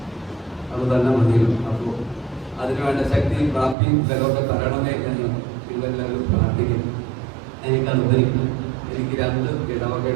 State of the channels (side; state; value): left; drops out; at 3.8 s